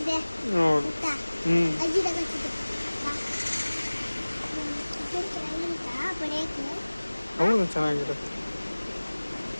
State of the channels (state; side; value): inverted; both; correlation -1.00